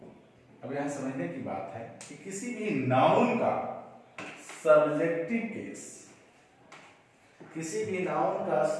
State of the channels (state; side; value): identical; both; correlation 1.00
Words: अब यहां समझने की बात है कि किसी भी नाउन का सब्जेक्टिव केस, किसी भी नाउन का